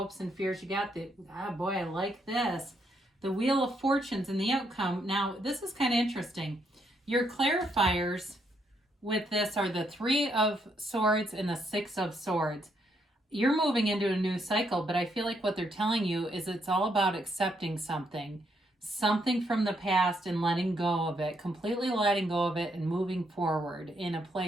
and fears. You got the, boy, I like this. The Wheel of Fortunes and the outcome. Now, this is kind of interesting. Your clarifiers with this are the Three of Swords and the Six of Swords. You're moving into a new cycle, but I feel like what they're telling you is it's all about accepting something from the past and letting go of it, completely letting go of it and moving forward in a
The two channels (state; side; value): normal; both; correlation 0.75